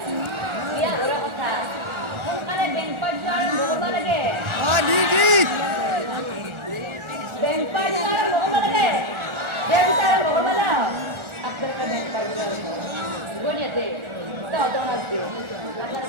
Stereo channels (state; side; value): late; left; 1.4 ms